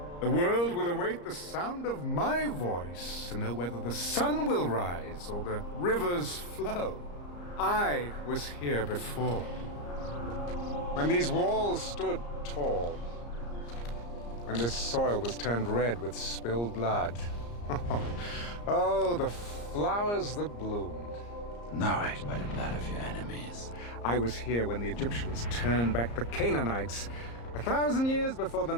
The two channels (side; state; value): right; late; 34 ms